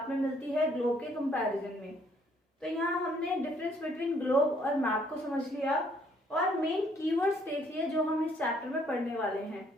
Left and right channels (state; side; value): normal; both; correlation 0.66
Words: में मिलती है ग्लोब के कंपैरिजन में। तो यहाँ हमने डिफरेंस बिटवीन ग्लोब और मैप को समझ लिया और मेन कीवर्ड्स देख लिए जो हम इस चैप्टर में पढ़ने वाले हैं।